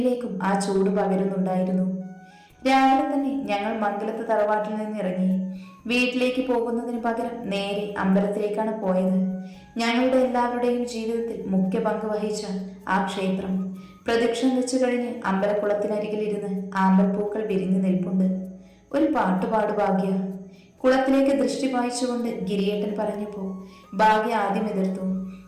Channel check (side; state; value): both; identical; correlation 1.00